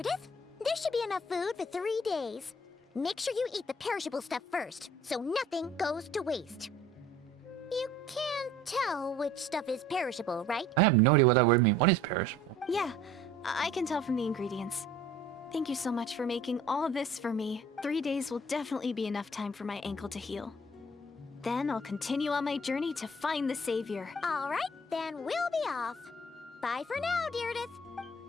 there should be enough food for 3 days. Make sure you eat the perishable stuff first, so nothing goes to waste. You can't tell which stuff is perishable, right? I have no idea what that word means. What is perishable? Yeah, I can tell from the ingredients. Thank you so much for making all this for me. 3 days will definitely be enough time for my ankle to heal. Then I'll continue on my journey to find the savior. All right, then we'll be off. Bye for now, Deirdre.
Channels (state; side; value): normal; both; correlation 0.52